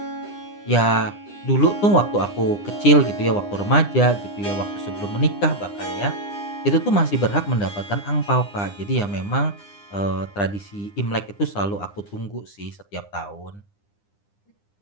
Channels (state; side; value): late; right; 9.9 ms